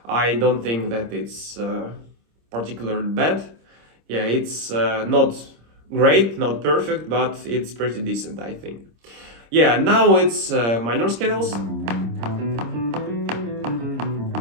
I don't think that it's particularly bad. Yeah, it's not great, not perfect, but it's pretty decent, I think. Yeah, now it's minor scales.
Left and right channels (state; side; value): late; left; 26 ms